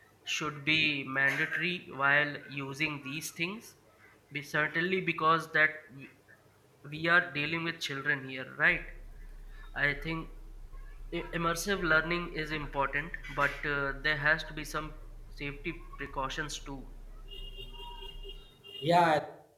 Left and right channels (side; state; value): both; identical; correlation 1.00